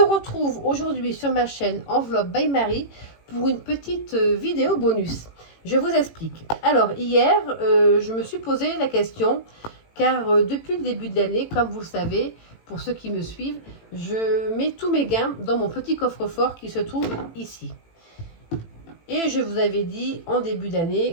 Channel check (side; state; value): right; late; 18 ms